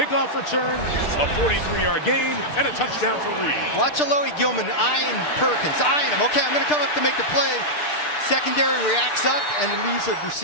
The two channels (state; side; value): late; right; 6.7 ms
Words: return, a 43-yard gain, and a touchdown for Reed. Watch Alohi Gilman eyeing Perkins, eyeing him. Okay, I'm going to come up to make the play. Secondary reacts up and leaves a